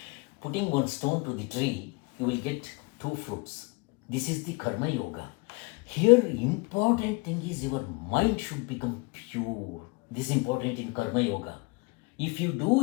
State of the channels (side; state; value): right; quieter; 27.4 dB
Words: Putting one stone to the tree, you will get 2 fruits. This is the Karma Yoga. Here, important thing is your mind should become pure. This is important in Karma Yoga. If you do